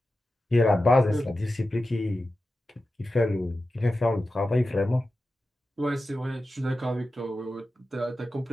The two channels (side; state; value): both; normal; correlation 0.93